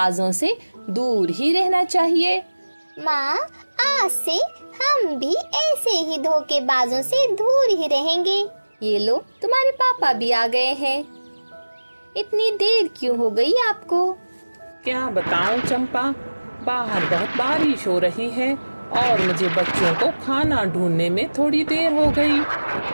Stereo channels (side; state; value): both; inverted; correlation -1.00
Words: से दूर ही रहना चाहिए। माँ, आज से हम भी ऐसे ही धोखेबाजों से दूर ही रहेंगे। ये लो, तुम्हारे पापा भी आ गए हैं। इतनी देर क्यों हो गई आपको? क्या बताऊं चंपा, बाहर बहुत बारिश हो रही है और मुझे बच्चों को खाना ढूंढने में थोड़ी देर हो गई।